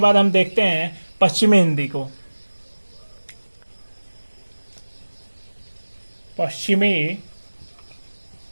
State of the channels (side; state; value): both; inverted; correlation -1.00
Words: हम देखते हैं पश्चिमी हिंदी को। पश्चिमी